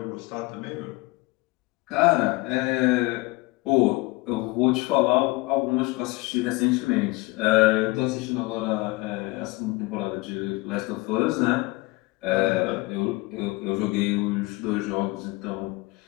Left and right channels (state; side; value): quieter; right; 22.7 dB